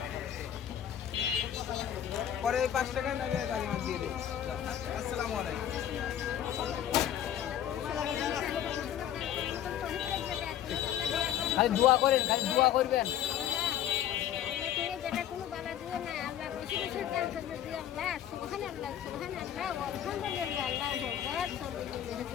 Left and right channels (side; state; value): right; quieter; 10.6 dB